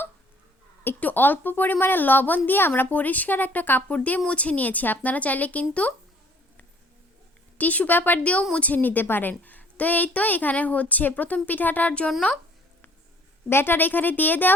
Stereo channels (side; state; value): both; normal; correlation 0.57